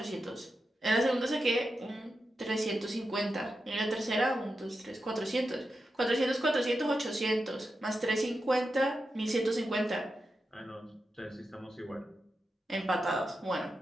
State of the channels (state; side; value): normal; both; correlation 0.89